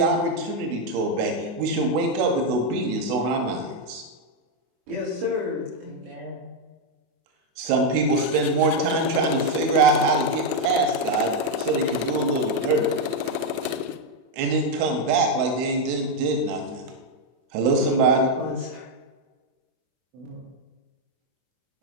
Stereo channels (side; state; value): left; late; 23 ms